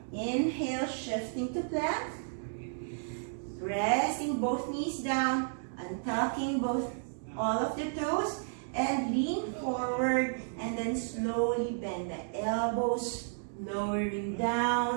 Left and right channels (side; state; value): left; silent; digital silence